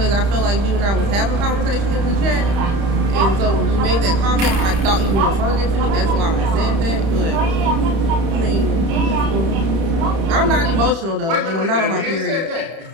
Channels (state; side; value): late; left; 31 ms